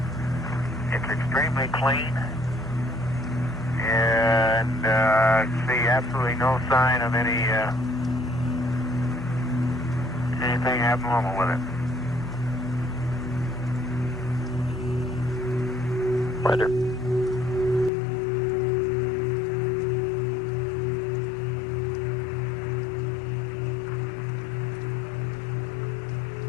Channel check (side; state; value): right; drops out; at 17.9 s